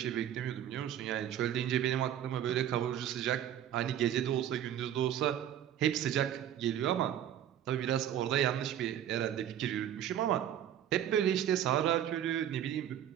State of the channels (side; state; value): left; quieter; 10.5 dB